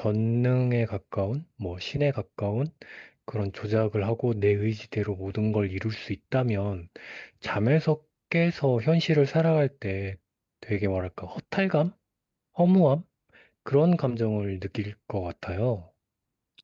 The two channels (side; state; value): both; identical; correlation 1.00